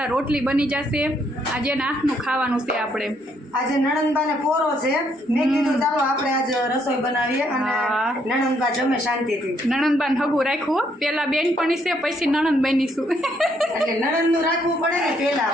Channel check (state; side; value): normal; both; correlation 0.71